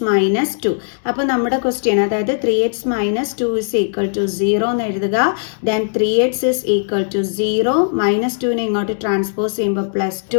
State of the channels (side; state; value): right; silent; 63 dB below the other